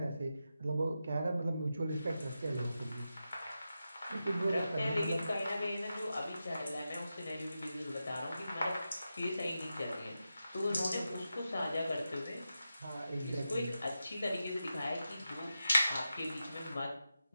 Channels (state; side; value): inverted; both; correlation -0.90